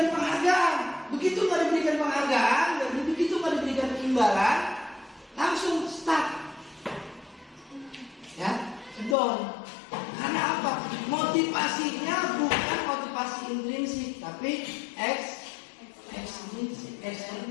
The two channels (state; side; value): drops out; right; at 9.2 s